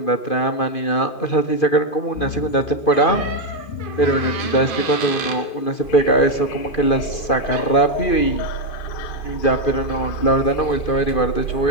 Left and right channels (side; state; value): right; late; 2.5 ms